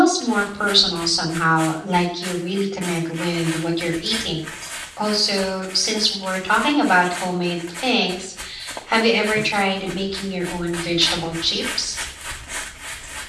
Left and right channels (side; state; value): both; identical; correlation 1.00